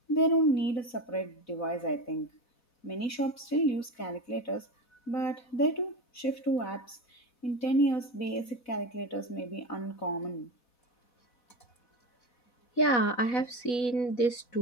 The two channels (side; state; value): right; late; 4.1 ms